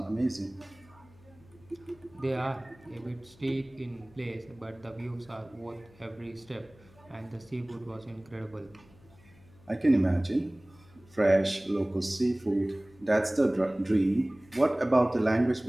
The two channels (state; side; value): noise; left; hum, 26 dB below the sound